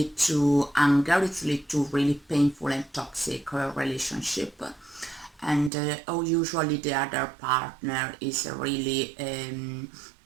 to anger, it leads to really painful and toxic relationship. And usually the other partner is really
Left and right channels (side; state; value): left; drops out; at 5.7 s